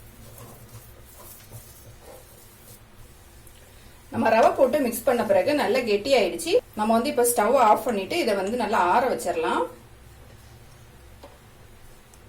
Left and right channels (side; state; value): both; identical; correlation 1.00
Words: நம்ம ரவை போட்டு மிக்ஸ் பண்ண பிறகு நல்லா கெட்டி ஆயிடுச்சு. நம்ம வந்து இப்ப ஸ்டவ் ஆஃப் பண்ணிட்டு இதை வந்து நல்லா ஆற வச்சிடலாம்.